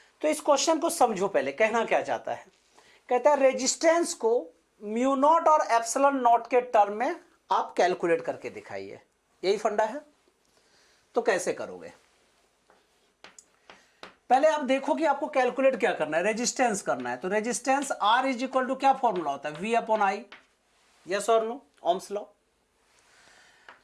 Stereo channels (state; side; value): identical; both; correlation 1.00